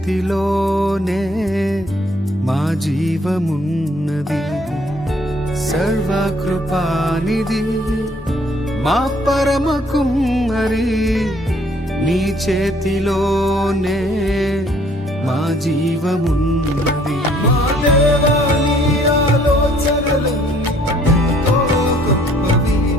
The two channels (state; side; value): normal; both; correlation 0.62